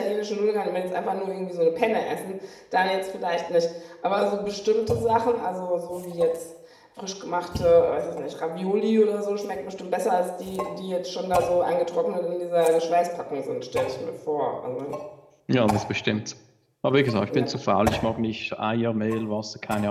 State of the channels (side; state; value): both; identical; correlation 1.00